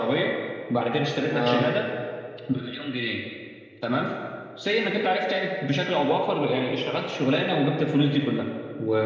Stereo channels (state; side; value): identical; both; correlation 1.00